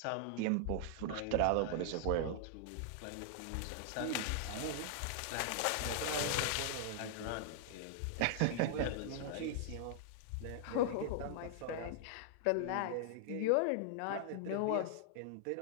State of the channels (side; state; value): both; different; correlation -0.01